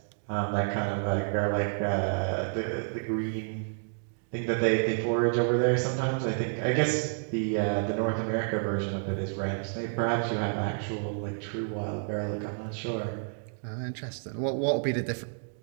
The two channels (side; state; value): left; silent; digital silence